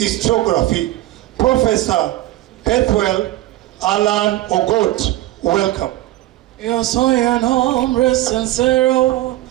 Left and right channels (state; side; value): quieter; left; 16.0 dB